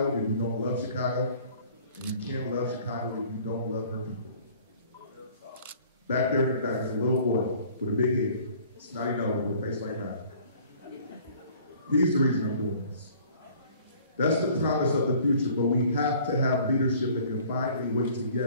if you don't love Chicago, and you can't love Chicago if you don't love her people. Back there in the back is a little boy with a big head, snotty nose with a face like that. He's the reason I'm doing this. That's the promise of the future, but we have to have leadership that can find a way to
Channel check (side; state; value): both; inverted; correlation -0.53